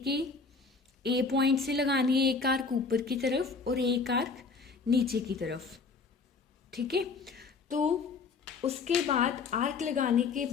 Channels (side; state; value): right; quieter; 4.6 dB